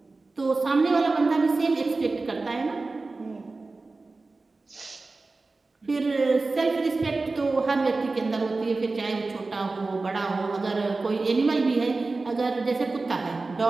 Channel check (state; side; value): quieter; left; 3.6 dB